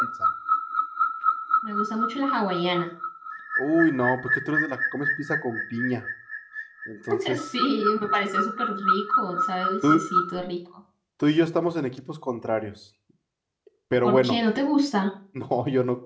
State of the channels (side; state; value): both; identical; correlation 1.00